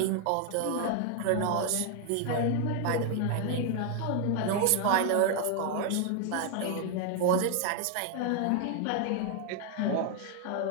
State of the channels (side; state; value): both; different; correlation 0.00